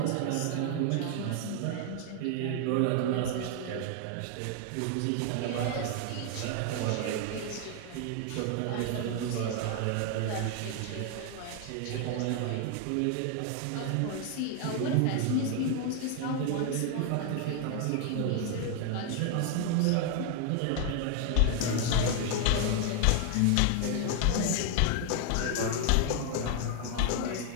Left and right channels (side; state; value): both; different; correlation 0.00